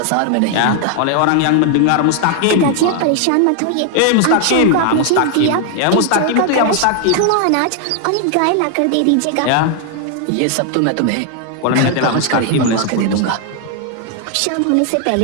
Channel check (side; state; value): both; different; correlation 0.00